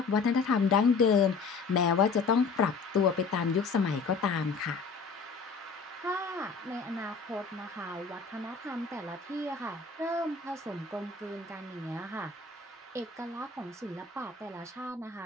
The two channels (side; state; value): right; quieter; 4.8 dB